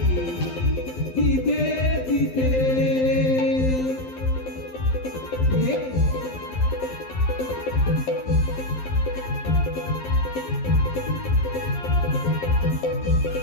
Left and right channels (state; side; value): late; right; 12 ms